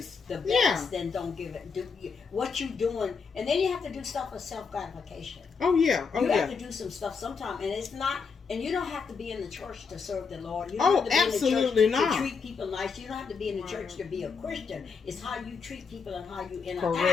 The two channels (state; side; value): quieter; right; 5.4 dB